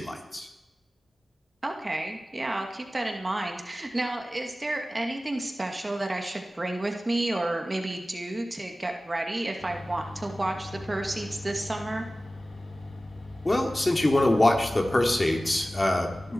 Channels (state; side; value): normal; both; correlation 0.96